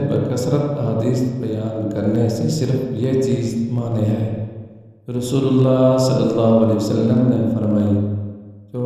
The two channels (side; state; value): both; identical; correlation 1.00